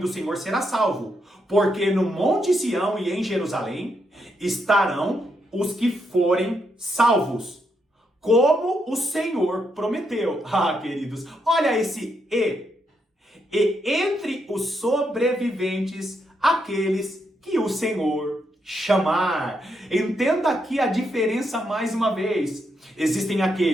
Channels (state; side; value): normal; both; correlation 0.80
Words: Senhor será salvo, porque no Monte Sião e em Jerusalém estarão os que forem salvos, como o Senhor prometeu. Ah, queridos, olha esse e. E entre os sobreviventes, aqueles que o Senhor chamar. Entenda aqui a diferença mais uma vez. Existem